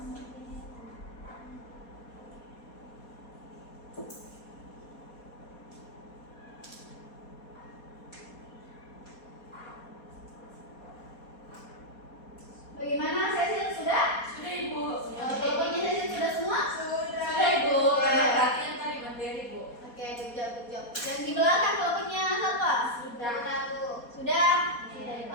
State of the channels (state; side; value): late; right; 4.2 ms